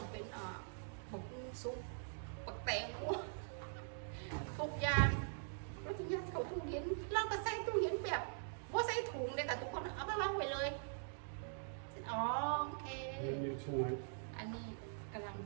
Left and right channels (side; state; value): left; silent; digital silence